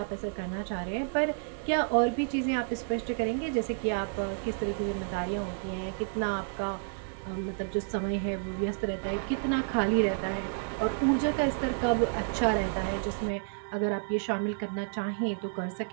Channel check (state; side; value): silent; left; digital silence